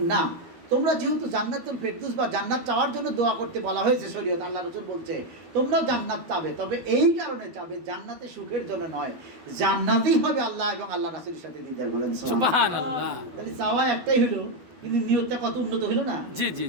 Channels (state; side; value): late; left; 13 ms